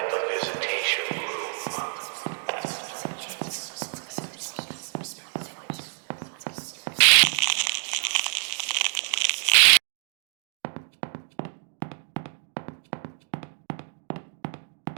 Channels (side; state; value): left; silent; 60 dB below the other